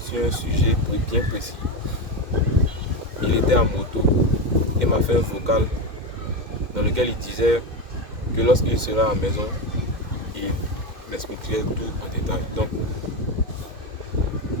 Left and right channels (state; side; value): late; left; 2.1 ms